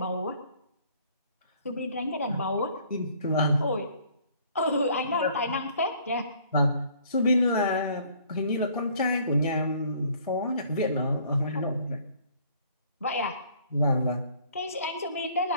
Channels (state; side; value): inverted; both; correlation -0.58